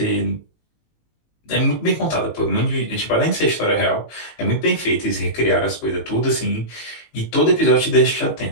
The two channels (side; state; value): right; late; 19 ms